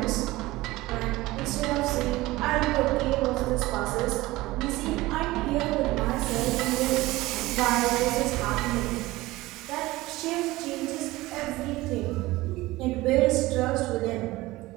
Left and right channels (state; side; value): quieter; left; 19.1 dB